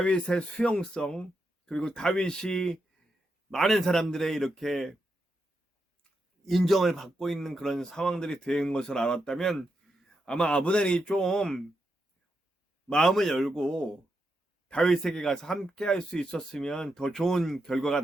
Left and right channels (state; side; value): normal; both; correlation 0.84